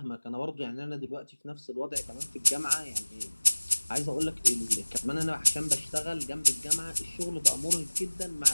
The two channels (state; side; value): inverted; both; correlation -1.00